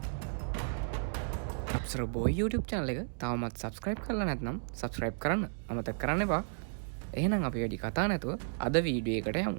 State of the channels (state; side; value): silent; left; digital silence